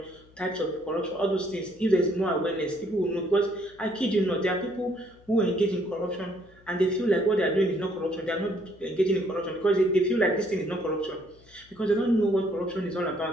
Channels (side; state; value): left; noise; hum, 27 dB below the sound